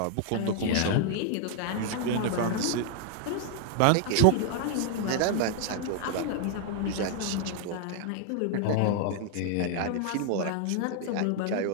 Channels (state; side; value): different; both; correlation 0.00